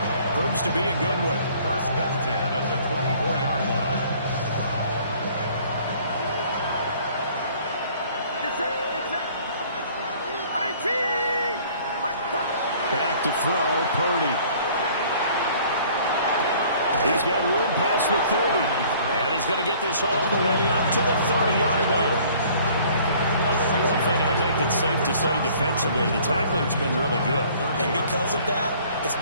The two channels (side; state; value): both; inverted; correlation -0.55